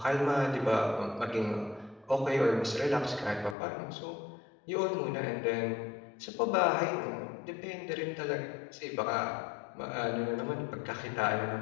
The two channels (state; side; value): drops out; right; at 3.6 s